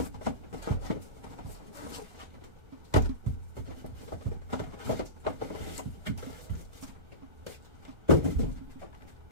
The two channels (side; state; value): left; late; 1.4 ms